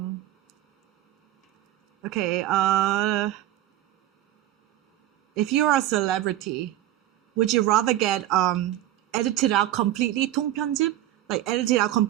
Okay, if you're a celebrity, would you rather get edited out completely, 통편집? Like edited out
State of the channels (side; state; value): left; quieter; 13.6 dB